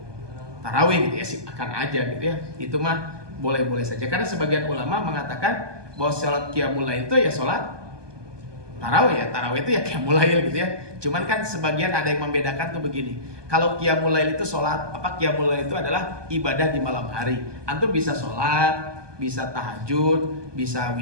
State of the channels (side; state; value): left; late; 1.2 ms